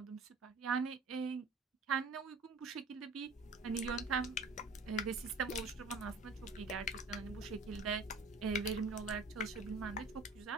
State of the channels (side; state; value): left; quieter; 3.3 dB